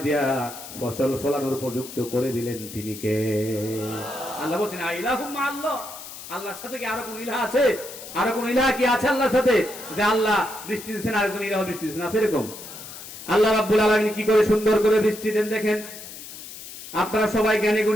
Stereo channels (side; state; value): left; noise; hiss, 13 dB below the sound